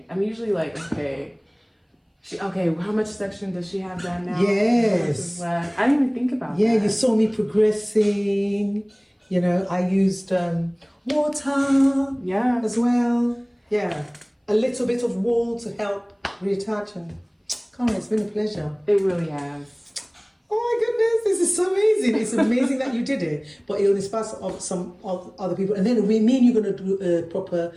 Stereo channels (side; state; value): both; identical; correlation 1.00